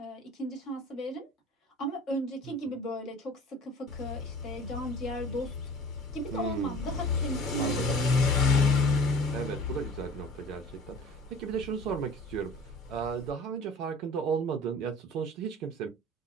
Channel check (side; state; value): both; normal; correlation 0.43